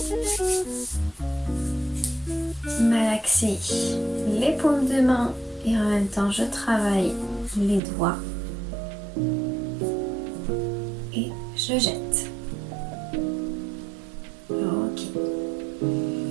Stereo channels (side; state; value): left; drops out; at 7.8 s